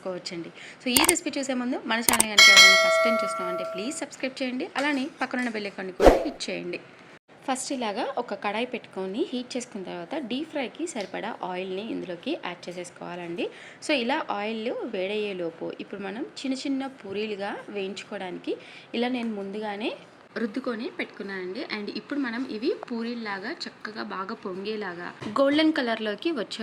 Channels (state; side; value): identical; both; correlation 1.00